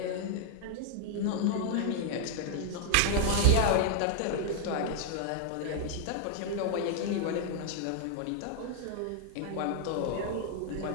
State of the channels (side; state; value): both; different; correlation 0.00